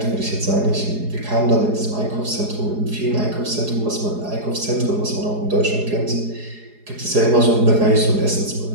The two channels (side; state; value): left; late; 4.8 ms